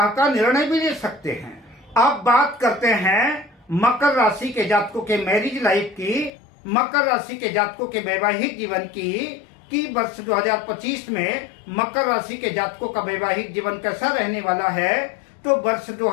का निर्णय भी ले सकते हैं। अब बात करते हैं मकर राशि के जातकों के मैरिज लाइफ की, मकर राशि के जातकों के वैवाहिक जीवन की, कि वर्ष 2025 में मकर राशि के जातकों का वैवाहिक जीवन कैसा रहने वाला है। तो वर्ष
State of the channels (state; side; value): drops out; right; at 6.3 s